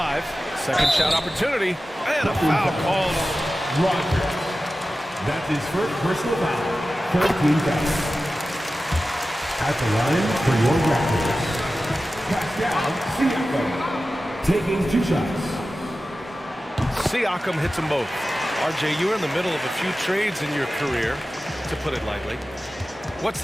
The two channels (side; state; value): both; normal; correlation 0.94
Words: Second shot opportunity. And a foul called. Rogers. That's his first personal foul. 13 fouls. At the line for your Raptors. Pascal Siakam. Taking 2 shots. Siakam hits them both. RJ, you were in the middle of a few trades in your career, to put it lightly. What's